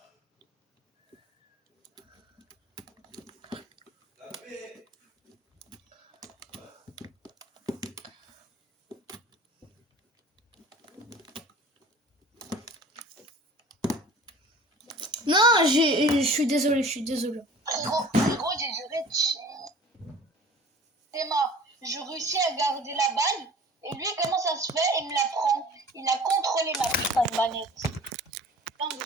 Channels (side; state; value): both; normal; correlation 0.45